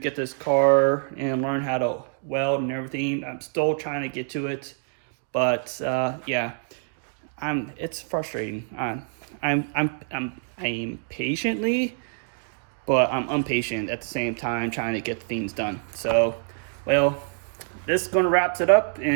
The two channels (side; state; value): left; silent; 57 dB below the other